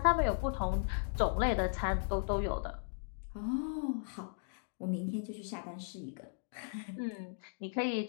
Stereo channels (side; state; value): right; silent; digital silence